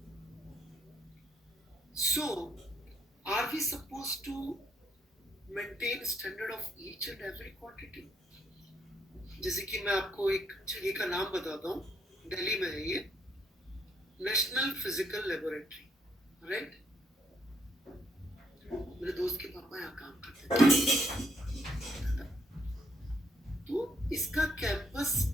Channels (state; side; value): normal; both; correlation 0.71